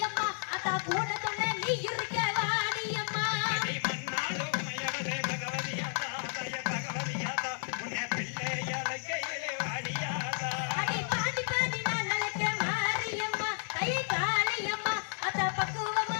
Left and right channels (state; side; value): silent; right; 56 dB below the other